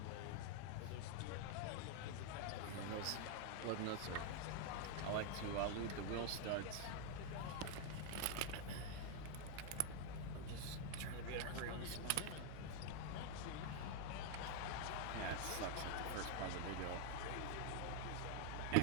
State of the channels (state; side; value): different; both; correlation 0.00